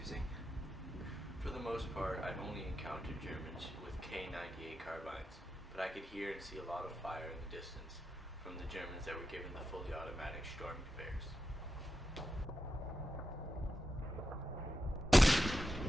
For the most part, I've only encountered Germans with K98 carbines, but I could hear and see a lot of fire in the distance from the Germans that were given the fully automatic Storm conveyors.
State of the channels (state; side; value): normal; both; correlation 0.88